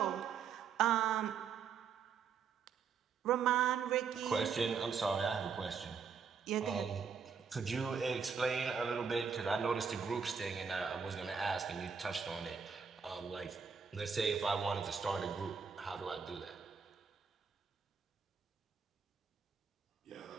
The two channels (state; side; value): quieter; left; 6.2 dB